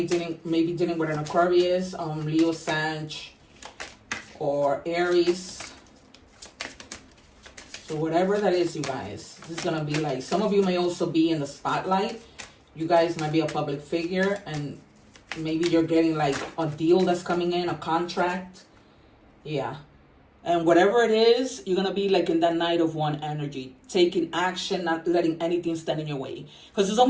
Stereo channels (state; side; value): identical; both; correlation 1.00